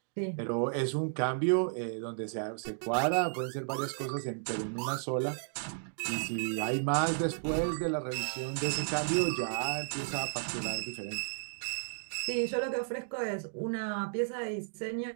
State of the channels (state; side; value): silent; left; digital silence